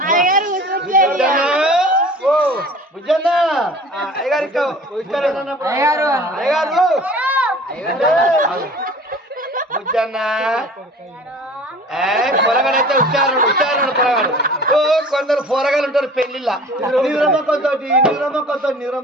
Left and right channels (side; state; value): both; normal; correlation 0.44